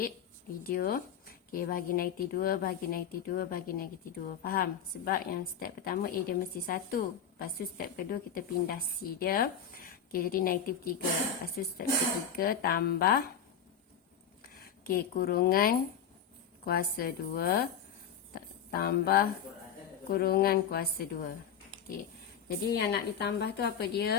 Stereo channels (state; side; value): quieter; right; 7.6 dB